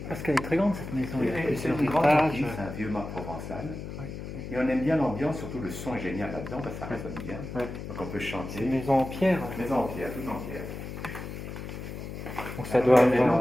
Parce qu'elle est très grande cette maison. Il y a C'est plusieurs une grande étages. bâtisse, c'est un vieux mât provençal. Ouais. Et on aime bien l'ambiance, surtout le son est génial là-dedans, parce que ça résonne bien. Ouais. Donc on peut chanter. C'est une maison en pierre. Maison en pierre, toute en pierre. Donc ça doit L'énorme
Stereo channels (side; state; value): left; noise; hum, 8 dB below the sound